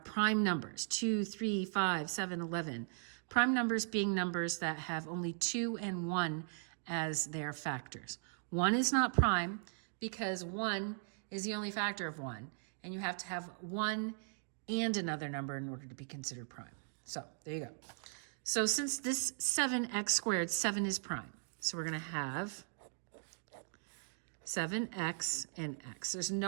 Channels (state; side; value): silent; left; digital silence